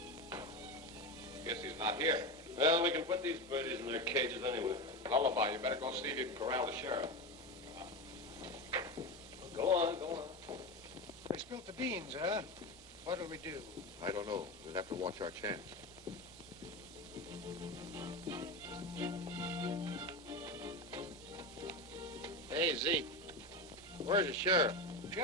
Guess he's not here. Well, we can put these birdies in their cages anyway. Lullaby, you better go see if you can corral the sheriff. Go on, go on. They spilt the beans, huh? What'll we do? I don't know. We'll have to watch our chance. Hey, Zeke. Where's the sheriff?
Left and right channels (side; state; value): both; normal; correlation 0.19